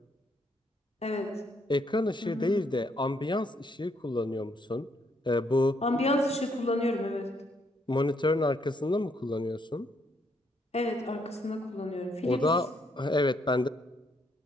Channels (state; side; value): normal; both; correlation 0.72